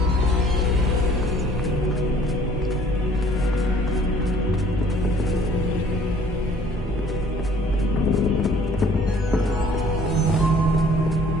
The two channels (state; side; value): normal; both; correlation 0.56